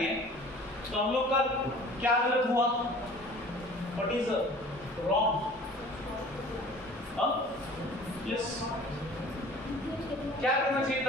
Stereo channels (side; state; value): both; normal; correlation 0.47